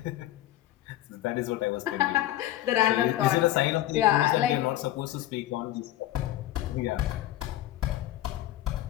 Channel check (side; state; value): right; quieter; 14.3 dB